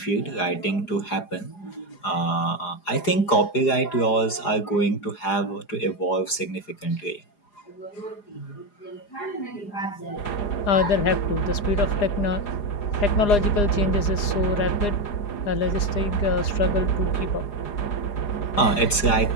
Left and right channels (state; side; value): late; right; 4.9 ms